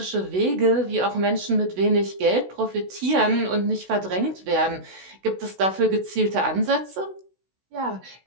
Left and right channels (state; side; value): late; left; 16 ms